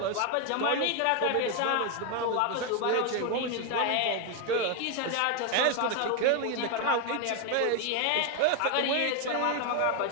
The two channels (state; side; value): different; both; correlation 0.01